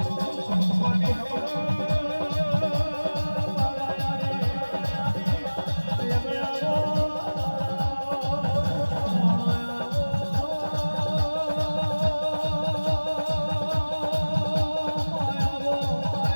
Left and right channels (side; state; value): both; inverted; correlation -1.00